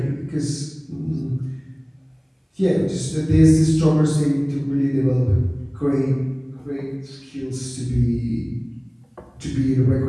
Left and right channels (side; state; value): both; identical; correlation 1.00